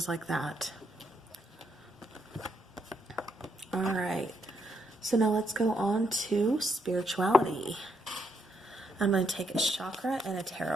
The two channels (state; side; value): normal; both; correlation 0.76